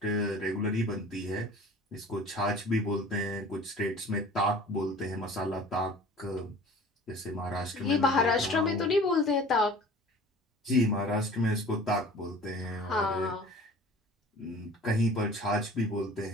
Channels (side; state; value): both; normal; correlation 0.45